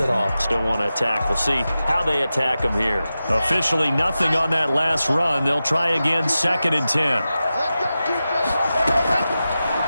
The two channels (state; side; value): inverted; both; correlation -0.93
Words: at all. Still want to attack. We'll see how they attack them here. Officially nothing on that last run. They'll try again, 2nd and 10.